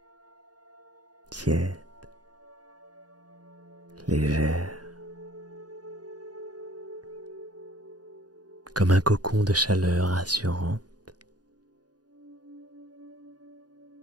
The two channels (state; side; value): late; left; 0.69 ms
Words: tiède, légère, comme un cocon de chaleur rassurante,